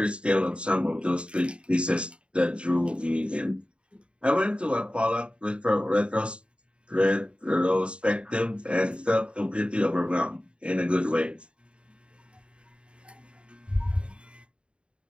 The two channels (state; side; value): late; left; 0.056 ms